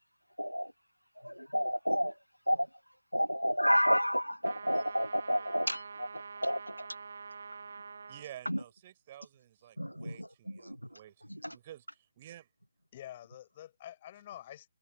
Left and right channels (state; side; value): inverted; both; correlation -0.99